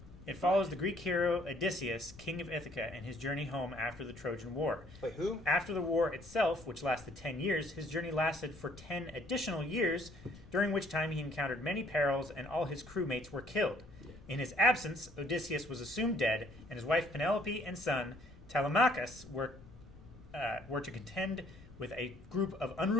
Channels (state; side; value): noise; left; rumble, 20 dB below the sound